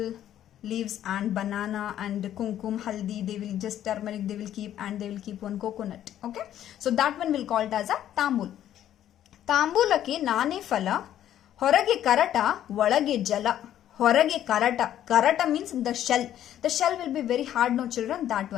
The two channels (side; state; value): right; quieter; 11.4 dB